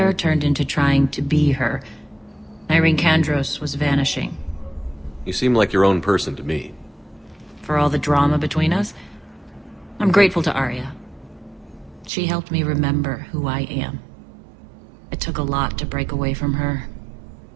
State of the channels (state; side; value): drops out; left; at 12.1 s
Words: turned into trying to be her. Irene Kandros was vanishing. You seem like your own person to me. For all the drama between us, I'm grateful to Aria. She helped me remember who I am. It took a lot to break away from her,